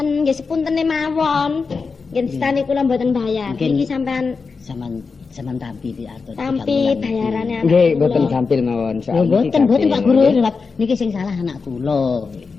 nggih sepuntene mawon. Nggih stani kula mboten bayar. Mungkin- Niki sampean Sampean tampi di arto. tampi bayarane anak Nggih kula. mboten sampil mawon Lho soal mboten Pak Guru lewat niki sing salah anak kula.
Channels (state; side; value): quieter; right; 4.8 dB